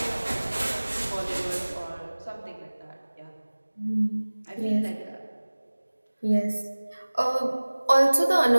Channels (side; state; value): both; inverted; correlation -1.00